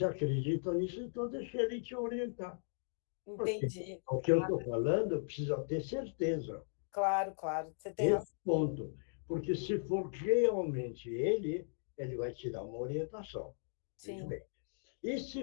acredita nisso, então deixa ele te orientar. Porque Entendi. o que eu estou falando precisa ter certeza. Claro, claro. Você tem Esse razão. ponto. Porque se for realmente ele vai te dar uma orientação. Veja Sim. bem. E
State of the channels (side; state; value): right; silent; digital silence